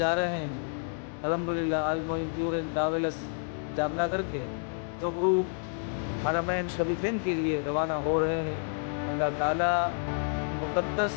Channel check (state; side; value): silent; right; 58 dB below the other